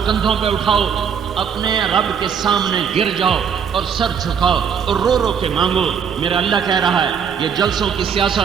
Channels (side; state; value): left; quieter; 7.1 dB